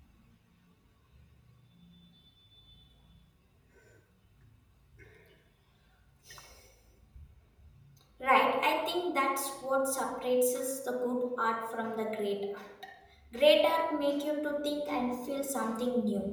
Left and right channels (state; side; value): identical; both; correlation 1.00